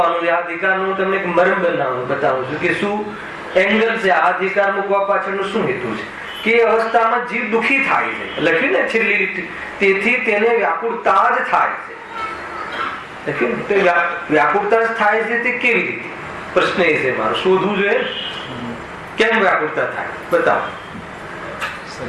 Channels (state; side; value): identical; both; correlation 1.00